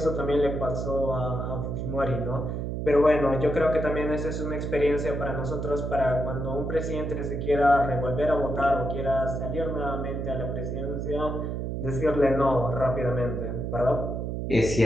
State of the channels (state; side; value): noise; right; hum, 3 dB below the sound